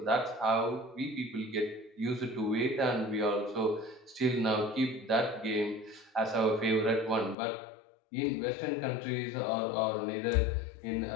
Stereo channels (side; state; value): right; drops out; at 7.4 s